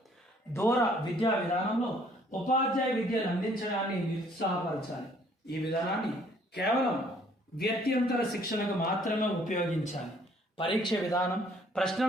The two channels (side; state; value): both; normal; correlation 0.61